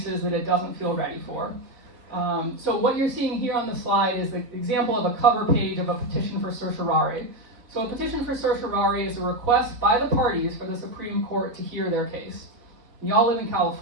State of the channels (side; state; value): left; late; 4.0 ms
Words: that it doesn't feel ready for. So what you're seeing here on the slide is the example of a cover page of a petition for certiorari. So a petition for certiorari is a request by the parties for the Supreme Court to hear their case. And y'all live in